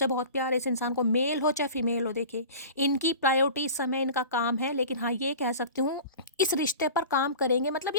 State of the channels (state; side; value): inverted; both; correlation -0.38